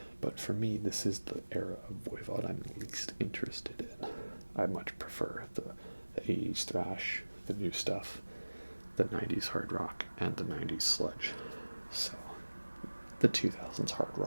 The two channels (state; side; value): inverted; both; correlation -1.00